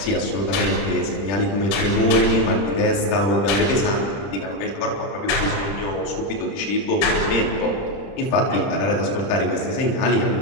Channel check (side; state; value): right; late; 30 ms